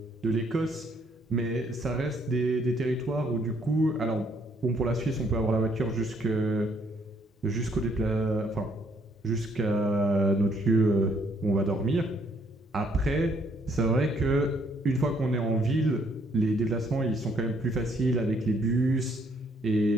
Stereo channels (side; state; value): both; normal; correlation 0.68